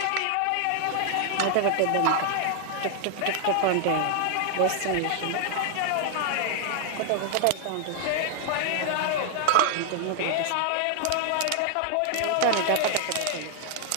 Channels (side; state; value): both; different; correlation 0.00